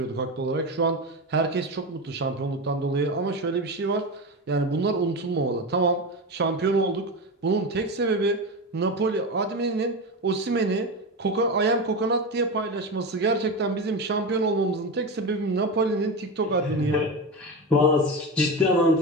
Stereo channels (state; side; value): normal; both; correlation 0.20